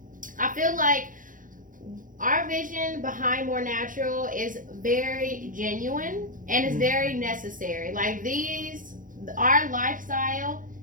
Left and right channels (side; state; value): left; late; 0.39 ms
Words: I feel like our vision behind Moor Natural is very genuine and it's very necessary. Like, our lifestyle